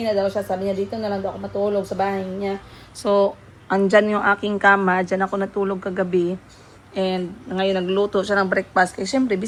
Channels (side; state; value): both; identical; correlation 1.00